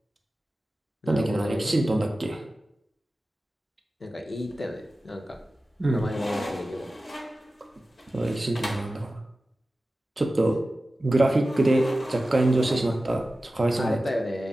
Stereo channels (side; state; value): both; normal; correlation 0.95